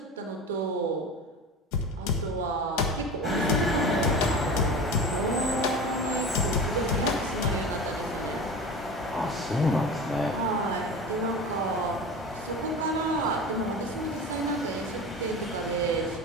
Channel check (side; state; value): both; normal; correlation 0.31